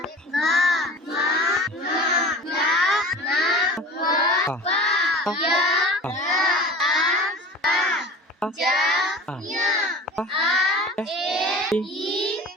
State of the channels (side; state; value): both; normal; correlation 0.38